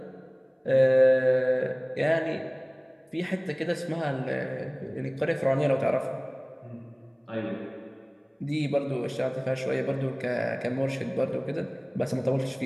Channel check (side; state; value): both; identical; correlation 1.00